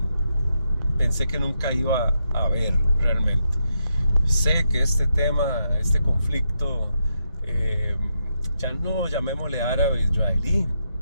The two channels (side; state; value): both; inverted; correlation -0.82